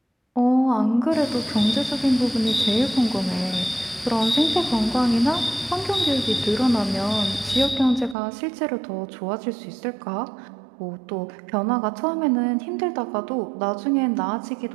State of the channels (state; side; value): drops out; left; at 8.2 s